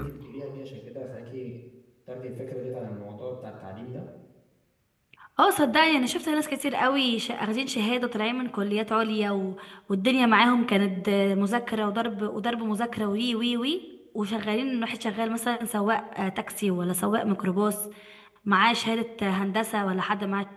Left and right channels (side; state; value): both; identical; correlation 1.00